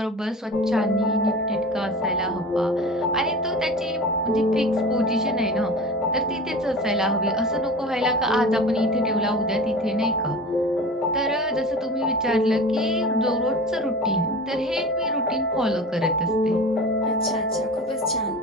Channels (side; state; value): both; normal; correlation 0.35